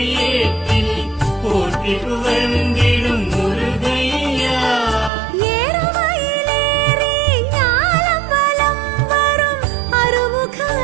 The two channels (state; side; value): drops out; left; at 5.1 s